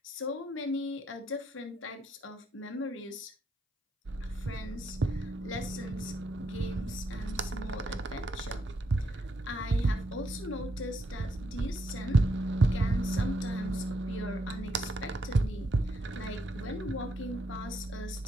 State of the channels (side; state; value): both; normal; correlation 0.77